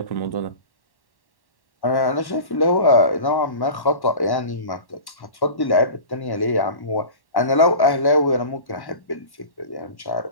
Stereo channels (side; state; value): right; late; 1.1 ms